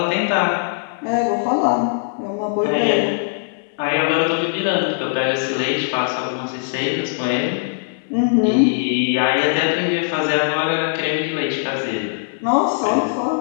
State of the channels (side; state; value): right; silent; 55 dB below the other